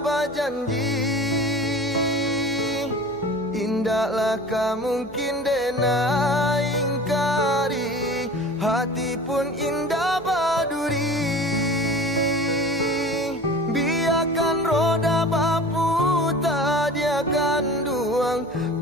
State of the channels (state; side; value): noise; right; hum, 25 dB below the sound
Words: berjanji. Indahlah mungkin denai ingkari, hati pun indah baduri. Biarkan roda baputar dia akan duang,